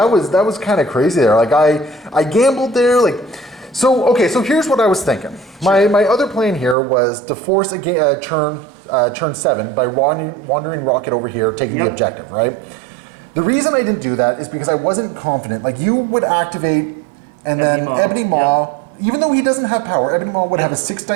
was kind of crazy there. Like I gambled there, like. So here's what I was thinking. My other plan here was to force a turn 7 by wandering Rocket over here, taking the objective, right? The reason I didn't do that is because I wasn't confident. Like, you would activate, and then Ebony Maw, even though he doesn't have power, Ebony Maw would have a 6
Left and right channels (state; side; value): drops out; left; at 6.8 s